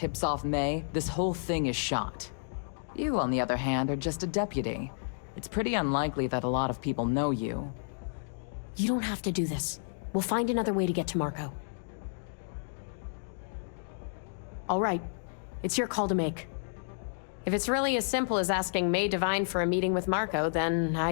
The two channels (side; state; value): right; silent; digital silence